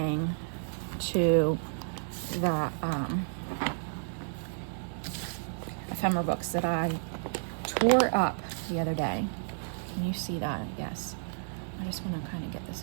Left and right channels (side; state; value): left; silent; 57 dB below the other